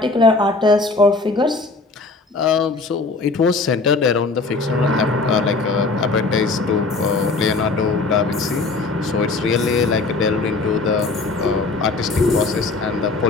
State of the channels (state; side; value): quieter; right; 3.7 dB